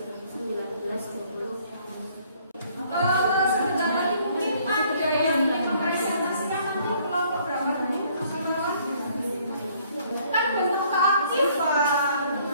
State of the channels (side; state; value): both; inverted; correlation -0.62